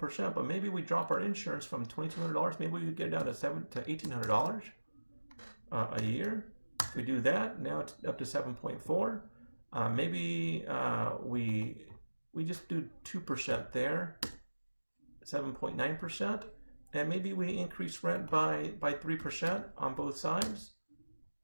but maybe we drop our insurance from $2,200, maybe we get it down to $1,800 a year. If we do that, now it's up to 7.4. Maybe we just do 2% there, 7.9%, and maybe we increase rent by 3% on both sides.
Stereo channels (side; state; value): both; inverted; correlation -1.00